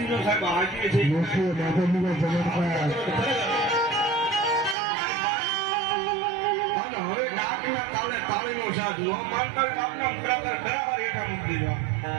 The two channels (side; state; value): left; drops out; at 4.8 s